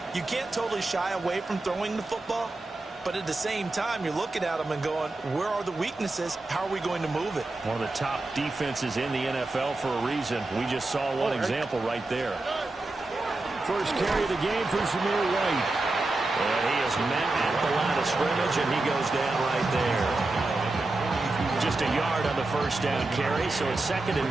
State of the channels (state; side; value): quieter; left; 3.0 dB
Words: you can't totally shy away from throwing the football, But at the same time, you're looking at them and going, where are the weaknesses? How are we going to move it? One of the top defenses in the NFL for a reason. We just saw one example right there. First carry of the game for Zamir White. And he is met at the line of scrimmage, and he goes down right there. Just a yard on the first down carry, so it's 2nd